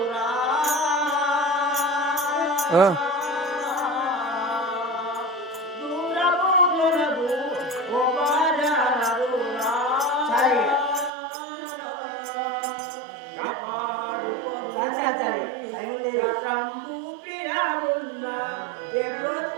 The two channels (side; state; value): left; drops out; at 11.1 s